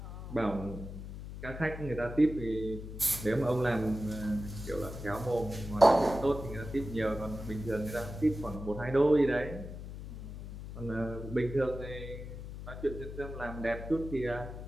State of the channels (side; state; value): left; noise; hum, 10 dB below the sound